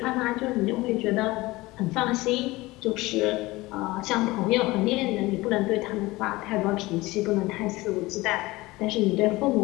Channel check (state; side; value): quieter; right; 20.3 dB